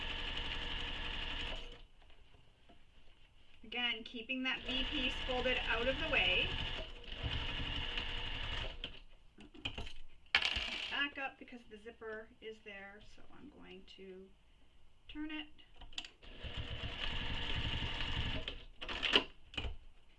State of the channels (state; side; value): identical; both; correlation 1.00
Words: Again, keeping that V piece folded out of the way. Back up because the zipper is there, so I'm going to turn it.